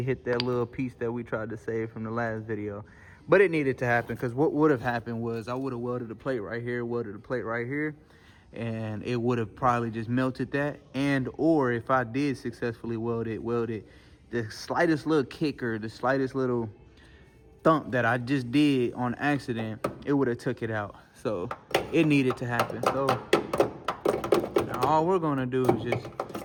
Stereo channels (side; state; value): both; identical; correlation 1.00